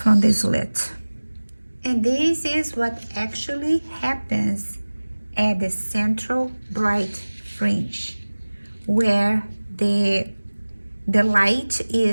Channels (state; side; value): inverted; both; correlation -1.00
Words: the slit. And this is what actually happens at the central bright fringe, where the light